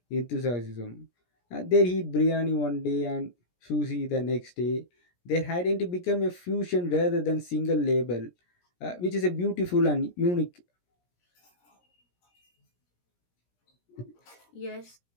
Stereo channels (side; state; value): right; late; 17 ms